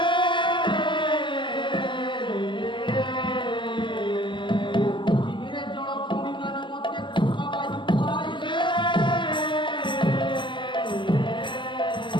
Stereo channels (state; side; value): late; right; 0.24 ms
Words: ପୃଥିବୀରେ ଜଳ ଭୂମିମାନେ ମଧ୍ୟ ବାୟୁ ପାଇଲେ।